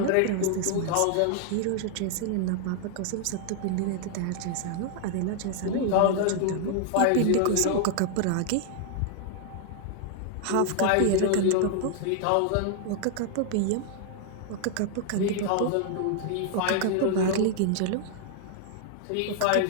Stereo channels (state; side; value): different; both; correlation 0.00